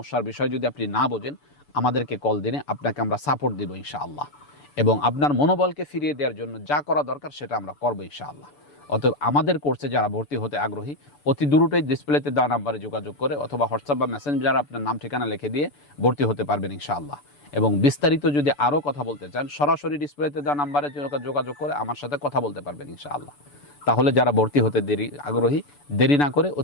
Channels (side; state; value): right; late; 6.9 ms